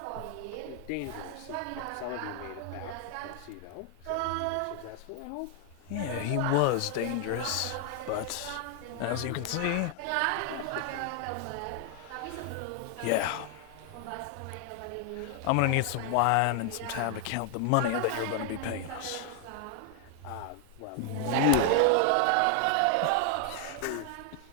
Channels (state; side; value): different; both; correlation 0.00